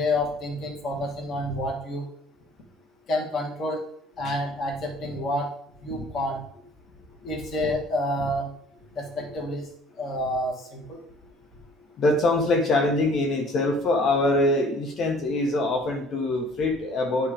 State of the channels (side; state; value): both; normal; correlation 0.54